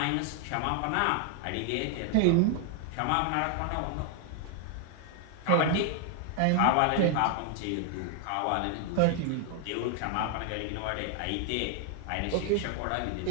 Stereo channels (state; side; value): different; both; correlation 0.00